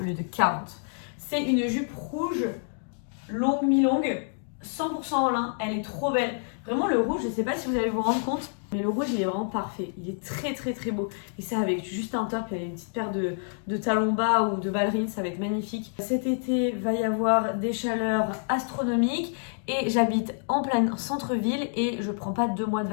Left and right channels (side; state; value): right; silent; digital silence